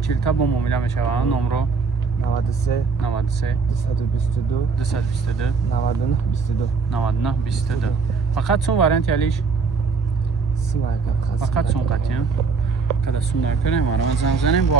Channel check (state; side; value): quieter; left; 4.8 dB